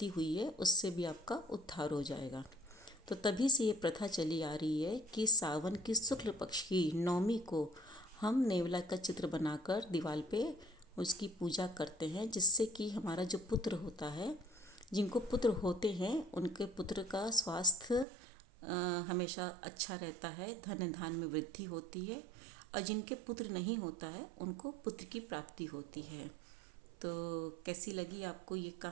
हुई है उससे भी आपका उद्धार हो जाएगा। तो तभी से ये प्रथा चली आ रही है कि सावन की शुक्ल पक्ष की नवमी को हम नेवला का चित्र बनाकर दीवार पे उसकी पूजा करते हैं, जिससे कि हमारा जो पुत्र होता है, जिनको पुत्र होते हैं उनके पुत्र का स्वास्थ्य हमेशा अच्छा रहता है, धन धान में वृद्धि होती है और जिनके पुत्र नहीं होता है उनको पुत्र की प्राप्ति होती है। तो कैसी लगी आपको ये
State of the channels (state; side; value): drops out; left; at 18.1 s